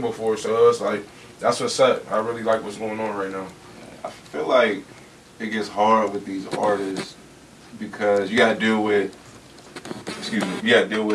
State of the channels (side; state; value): both; identical; correlation 1.00